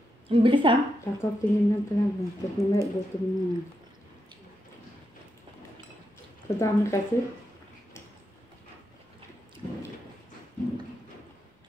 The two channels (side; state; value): both; normal; correlation 0.84